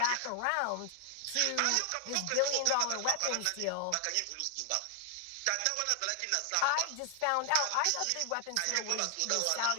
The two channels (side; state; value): both; different; correlation 0.00